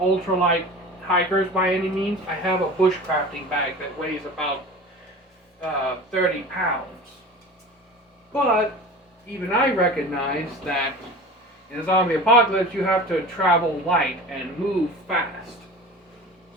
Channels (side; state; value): both; normal; correlation 0.36